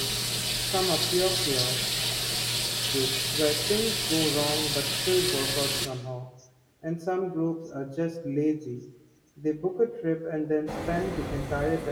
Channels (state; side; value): identical; both; correlation 1.00